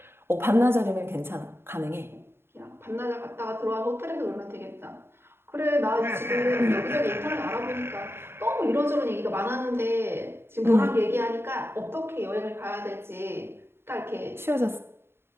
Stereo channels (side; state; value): left; late; 0.11 ms